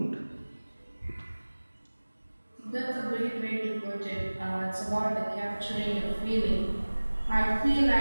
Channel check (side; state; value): both; inverted; correlation -1.00